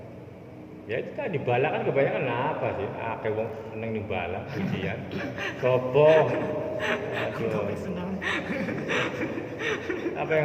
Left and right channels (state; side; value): identical; both; correlation 1.00